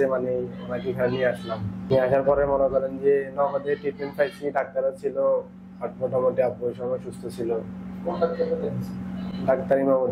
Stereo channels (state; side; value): identical; both; correlation 1.00